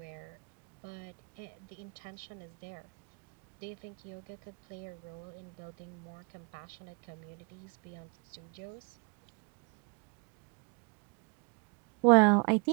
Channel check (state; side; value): quieter; left; 33.6 dB